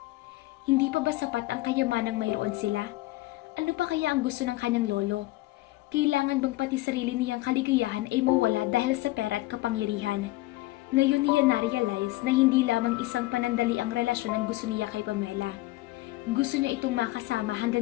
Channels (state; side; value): quieter; right; 19.0 dB